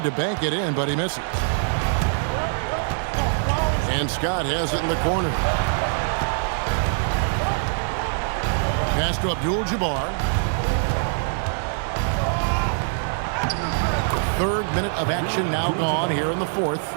to bank it in, but he misses. And Scott has it in the corner. Pass to Abdul-Jabbar. Third minute of action now gone here in the fourth.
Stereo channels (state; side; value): silent; left; digital silence